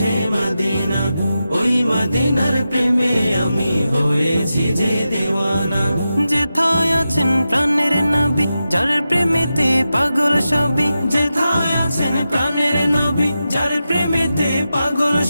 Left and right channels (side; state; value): both; inverted; correlation -0.91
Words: মদিনা, ওই মদিনার প্রেমে আমি হয়েছি যে দিওয়ানা। যেথায় আছেন প্রাণের নবী, যার প্রেমেতে পাগল সবই। যেথায় আছেন প্রাণের নবী, যার প্রেমেতে পাগল